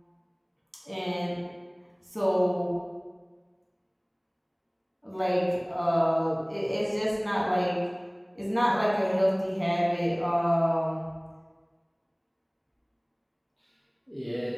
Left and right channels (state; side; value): identical; both; correlation 1.00